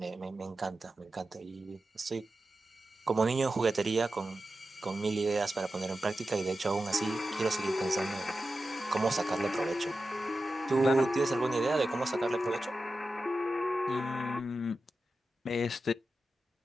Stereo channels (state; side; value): normal; both; correlation 0.92